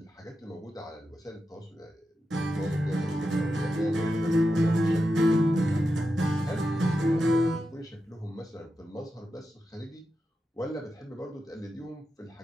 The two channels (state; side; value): normal; both; correlation 0.89